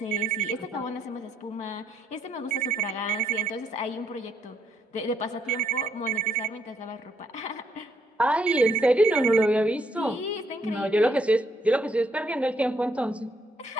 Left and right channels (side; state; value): both; normal; correlation 0.73